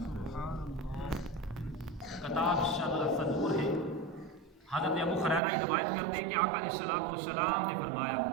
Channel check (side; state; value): left; drops out; at 5.4 s